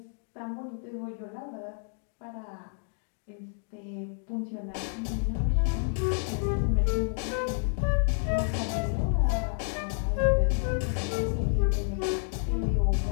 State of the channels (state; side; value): silent; right; 58 dB below the other